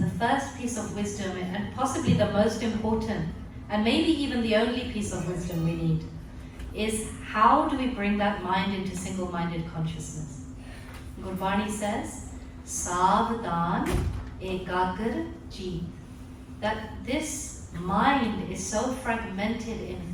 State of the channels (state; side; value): identical; both; correlation 1.00